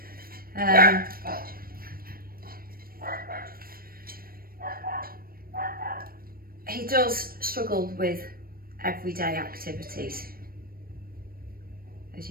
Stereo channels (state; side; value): late; left; 0.43 ms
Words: He does struggle with everyday activities, as